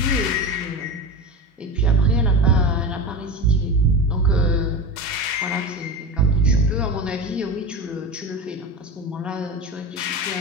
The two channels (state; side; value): normal; both; correlation 0.25